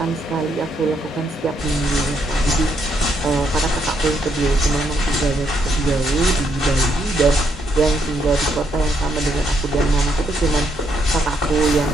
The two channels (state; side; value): normal; both; correlation 0.75